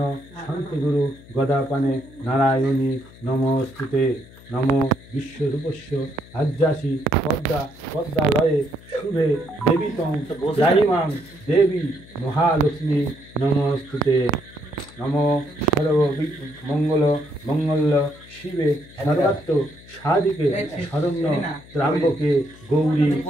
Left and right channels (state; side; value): noise; left; hum, 21 dB below the sound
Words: শান্তিগুরু গদাপানে নারায়ণী নমস্তুতে নম বিশ্বরূপস্য আজ্যাসি পদ্মা পদ্মালয়ে শুভে দেবীতং জাহিমাং দেবী মহালক্ষ্মী নমস্তুতে নম সর্ব মঙ্গল মঙ্গল শিবে সর্বাত্ম সাধিকে শরণ্য ত্রাম্বকে গৌরী